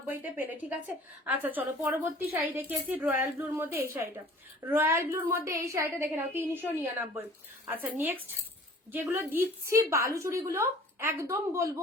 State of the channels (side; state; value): both; normal; correlation 0.48